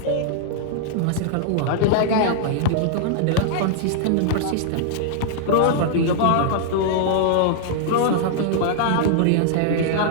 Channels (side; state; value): both; different; correlation -0.01